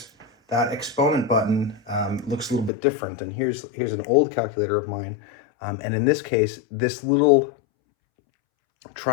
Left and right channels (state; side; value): drops out; right; at 2.7 s